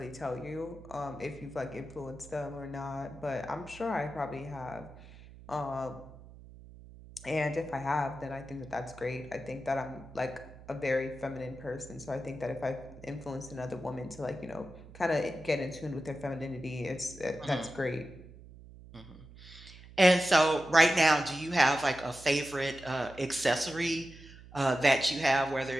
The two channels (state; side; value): noise; right; hum, 18 dB below the sound